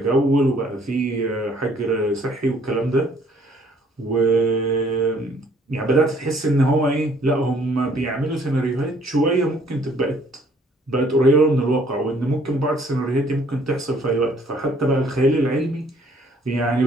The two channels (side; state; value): both; normal; correlation 0.61